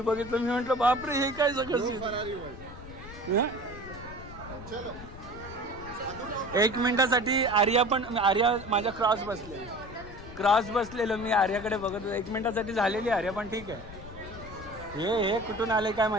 मी म्हटलं बापरे हे काय सगळं. 1 मिनिटासाठी आर्या माझ्या क्रॉस बसलेलो मी आर्याकडे बघत होतो. 1 मिनिटासाठी झालेली आर्या, पण ठीक आहे. हे कुठून आले काय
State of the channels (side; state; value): left; noise; rumble, 14 dB below the sound